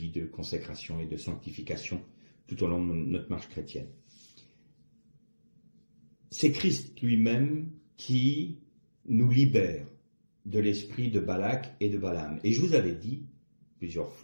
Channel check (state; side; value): inverted; both; correlation -1.00